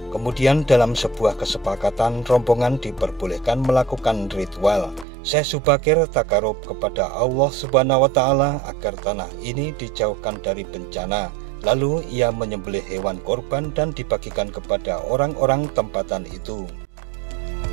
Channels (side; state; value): left; drops out; at 5.1 s